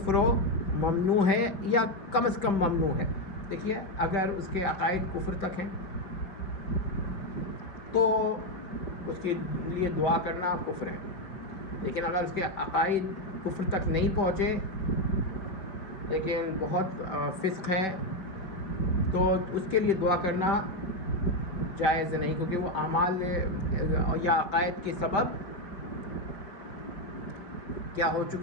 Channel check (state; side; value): late; right; 5.2 ms